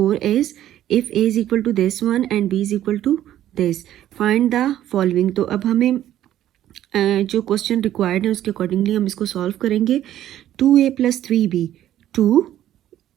is, if a is equal to this one and b is equal to this, find the following. तो अब हमें जो क्वेश्चन रिक्वायर्ड है उसके अकॉर्डिंगली हम इसको सॉल्व करेंगे। 2a + 3b, 2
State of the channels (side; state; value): left; quieter; 12.3 dB